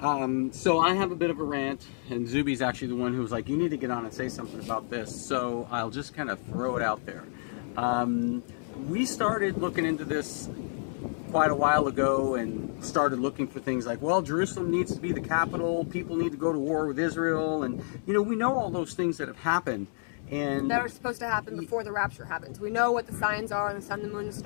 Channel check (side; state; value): right; silent; digital silence